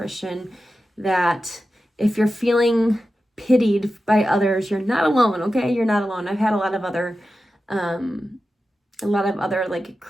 that if you're feeling pitied by others, you're not alone, okay? You're not alone. I've had a lot of other like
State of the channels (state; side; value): normal; both; correlation 0.92